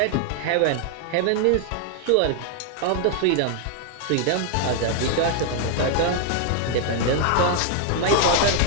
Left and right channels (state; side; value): different; both; correlation 0.00